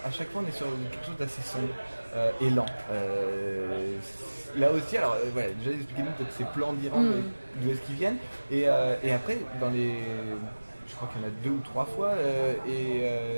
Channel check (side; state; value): both; inverted; correlation -1.00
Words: à chaque fois on est sur quelque chose d'assez sombre et lent. Là aussi, alors déjà expliquez-nous peut-être ces plans d'Iran, d'où est-ce qu'ils viennent. Et après, je crois qu'il y en a 2 ou 3 fois,